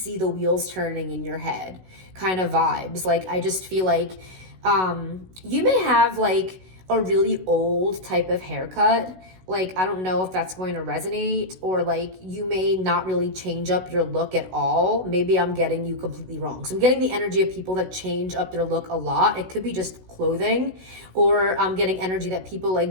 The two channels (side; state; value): left; late; 16 ms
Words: the wheels turning in your head kind of vibes. Like I just feel like you may have like a really old type of haircut. Like, I don't know if that's going to resonate, or like you may not really change up your look at all. Maybe I'm getting you completely wrong. So I'm getting the energy of people that change up their look a lot. It could be just clothing, or I'm getting energy that people